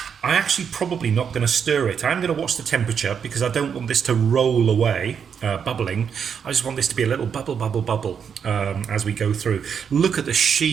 I'm actually probably not going to stir it. I'm going to watch the temperature, because I don't want this to roll away, bubbling. I just want this to be a little bubble as we go through. Look at the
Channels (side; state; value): left; quieter; 7.1 dB